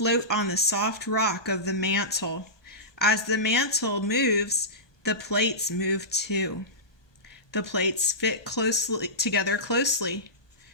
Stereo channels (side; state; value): right; late; 1.2 ms